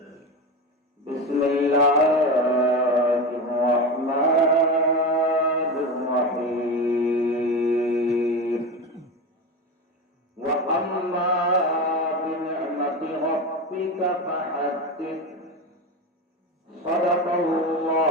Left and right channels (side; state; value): both; normal; correlation 0.22